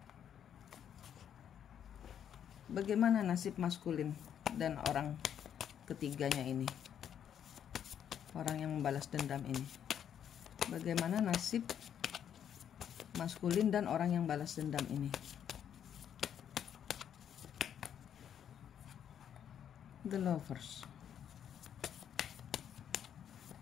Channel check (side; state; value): right; quieter; 9.1 dB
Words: Bagaimana nasib maskulin dan orang ketiganya ini? Orang yang membalas dendam ini. Bagaimana nasib maskulin dan orang yang balas dendam ini? The Lovers.